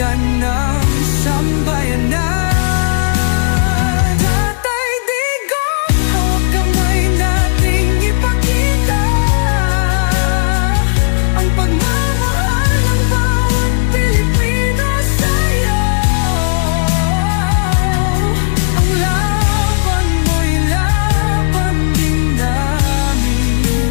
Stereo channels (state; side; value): silent; right; 66 dB below the other